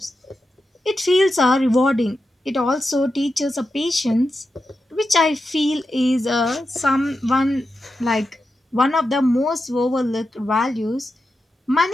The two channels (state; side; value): normal; both; correlation 0.89